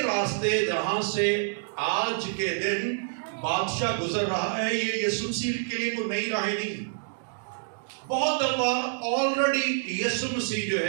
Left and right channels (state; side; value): silent; left; digital silence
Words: راستے جہاں سے آج کے دن بادشاہ گزر رہا ہے، یہ یسوع مسیح کے لیے کوئی نئی راہیں نہیں. بہت دفعہ آلریڈی یسوع مسیح جو